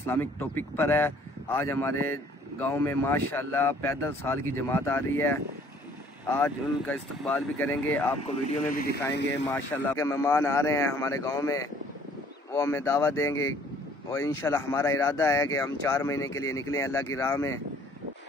टॉपिक पर है। आज हमारे गाँव में माशाल्लाह पैदल साल की जमात आ रही है। आज उनका इस्तकबाल भी करेंगे, आपको वीडियो में भी दिखाएंगे। माशाल्लाह के मेहमान आ रहे हैं हमारे गाँव में, वो हमें दावत देंगे और इंशाल्लाह हमारा इरादा है कि हम 4 महीने के लिए निकलें अल्लाह की राह में।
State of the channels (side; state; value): both; normal; correlation 0.58